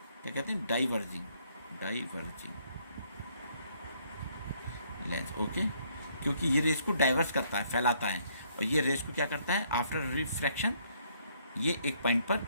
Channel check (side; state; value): both; inverted; correlation -0.67